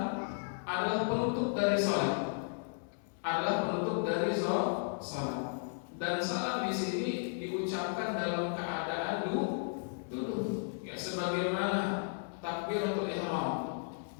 adalah penutup dari sholat, sholat. Dan salam di sini diucapkan dalam keadaan duduk. Ya, sebagaimana takbiratul ihram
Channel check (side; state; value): right; silent; digital silence